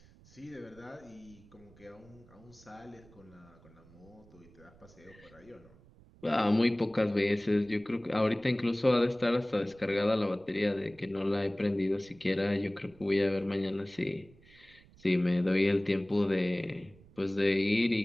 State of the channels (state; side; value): noise; right; rumble, 25 dB below the sound